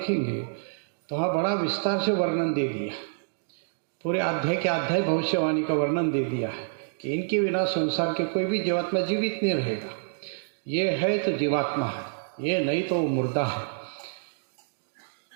तो वहाँ बड़ा विस्तार से वर्णन दे दिया। पूरे अध्याय के अध्याय भविष्यवाणी का वर्णन दे दिया है कि इनके बिना संसार के कोई भी जीवात्मा जीवित नहीं रहेगा। ये है तो जीवात्मा है, ये नहीं तो मुर्दा है।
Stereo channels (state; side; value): silent; left; digital silence